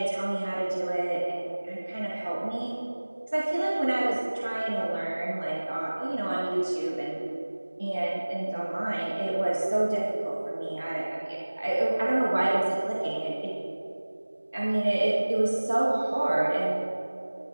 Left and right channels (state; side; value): inverted; both; correlation -1.00